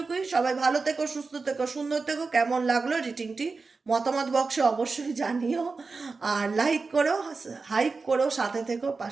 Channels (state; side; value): quieter; left; 4.2 dB